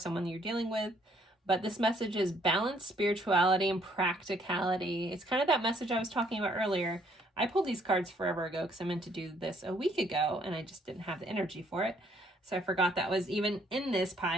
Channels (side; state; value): both; normal; correlation 0.66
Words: you're dealing with. But this message is balance, spirituality, and practicality. It's kind of that message I was talking about earlier. I pulled these cards forever ago because I meant to do this a week ago and I just didn't have the energy for it. So I forgot that was even in this